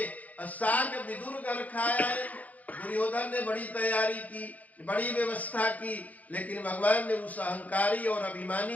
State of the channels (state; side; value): late; right; 0.076 ms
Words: साग विदुर घर खाया है। दुर्योधन ने बड़ी तैयारी की, बड़ी व्यवस्था की, लेकिन भगवान ने उस अहंकारी और